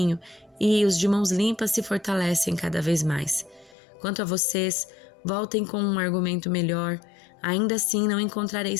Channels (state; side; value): drops out; right; at 3.8 s